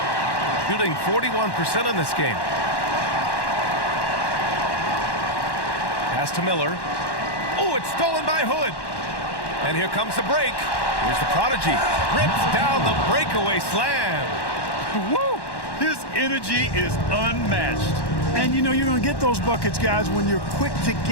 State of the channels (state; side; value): late; right; 1.1 ms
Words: Shooting 41% in this game. Pass to Miller. Oh, it's stolen by Hood. And here comes the break. Here's the prodigy. Rips down the breakaway slam. Woo! His energy is unmatched. And you know you're going to get those buckets, guys, when you're quick to